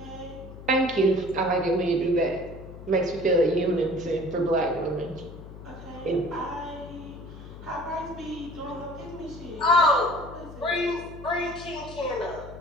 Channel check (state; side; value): noise; left; hum, 14 dB below the sound